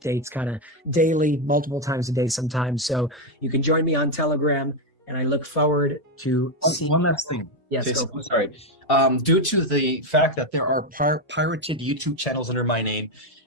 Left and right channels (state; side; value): normal; both; correlation 0.06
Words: kind of daily, multiple times a day sometimes. So you can join me on Telegram, and I look forward to seeing. One last thing. Yes, Jason, sorry. Due to the fact that there are pirated YouTube channels under my name,